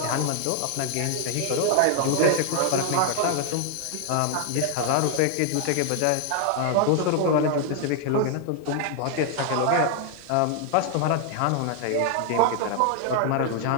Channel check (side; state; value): both; different; correlation 0.00